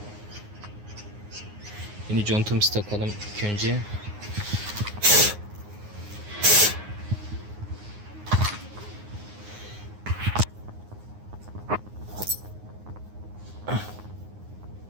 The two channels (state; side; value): late; left; 9.6 ms